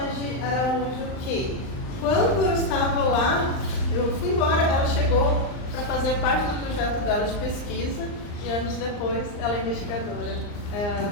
Araújo, que quando eu estava lá, eu fui embora, ela chegou para fazer parte do projeto dela de pesquisa e anos depois ela é investigadora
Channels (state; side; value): late; right; 39 ms